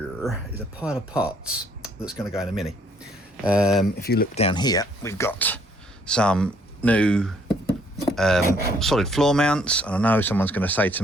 is a pile of parts that's going to go in a Mini. If you look down here, we've got some new solid floor mounts, and I know someone's going to say to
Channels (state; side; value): normal; both; correlation 0.65